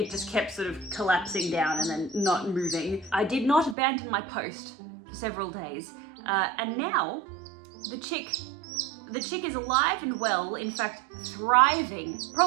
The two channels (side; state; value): left; drops out; at 3.8 s